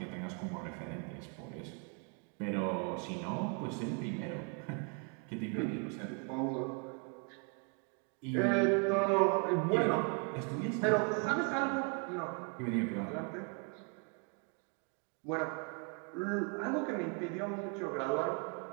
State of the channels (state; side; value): quieter; left; 36.3 dB